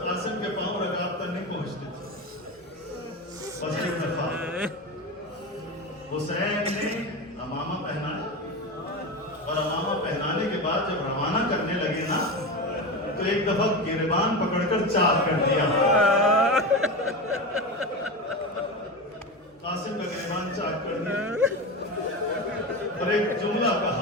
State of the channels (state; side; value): normal; both; correlation 0.22